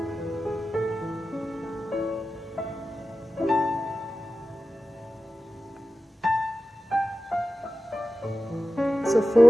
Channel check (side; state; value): both; normal; correlation 0.94